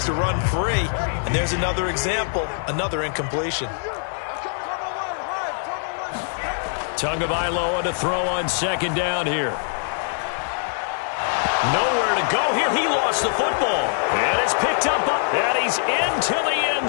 to run free. And there's another example, another incompletion. Tagovailoa to throw on 2nd down here. Nowhere to go here. He lost the football. And it's picked up, and he's into the end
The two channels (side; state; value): right; silent; digital silence